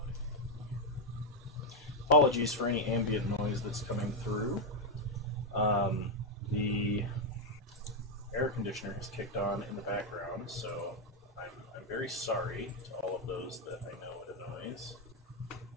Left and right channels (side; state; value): both; normal; correlation 0.03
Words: Apologies for any ambient noise that's coming through. The air conditioner has kicked on in the background, so I'm very sorry to all of those that I know it annoys.